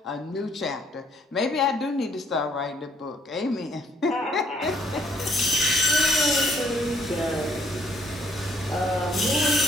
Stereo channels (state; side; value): normal; both; correlation 0.66